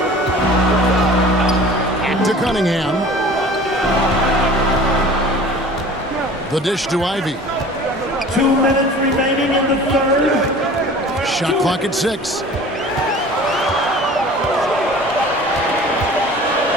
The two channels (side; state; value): both; normal; correlation 0.43